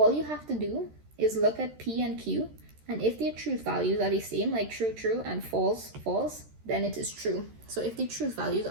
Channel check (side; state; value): left; late; 13 ms